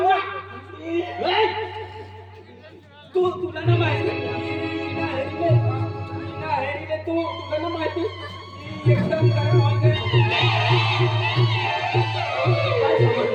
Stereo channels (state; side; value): identical; both; correlation 1.00